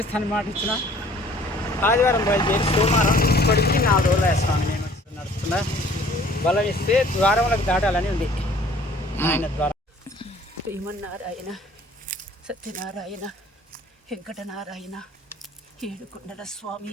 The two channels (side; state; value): both; normal; correlation 0.54